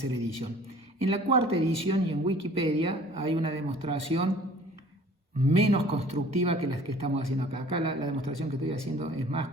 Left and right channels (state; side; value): normal; both; correlation 0.50